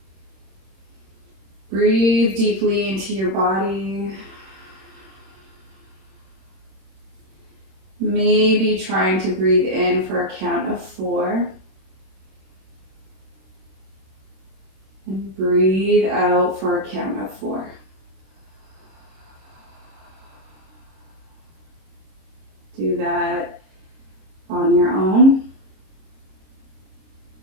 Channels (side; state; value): left; late; 27 ms